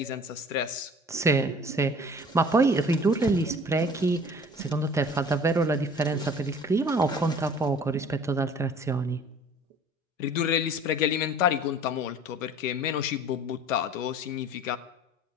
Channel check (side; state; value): both; normal; correlation 0.47